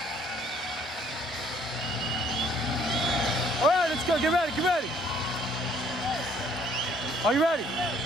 All right, let's go. Get ready. Get ready. Are you ready?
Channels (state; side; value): normal; both; correlation 0.62